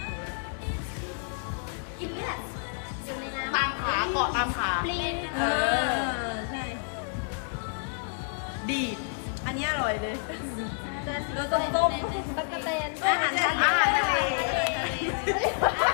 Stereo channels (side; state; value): right; silent; 57 dB below the other